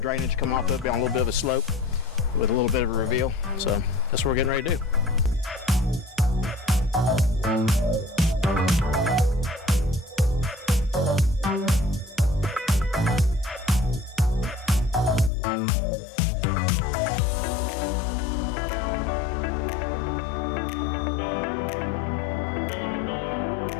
coming off of it, be on a little bit of a slope with a little bit of a reveal. So that's what we're getting ready to do.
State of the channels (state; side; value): drops out; right; at 15.3 s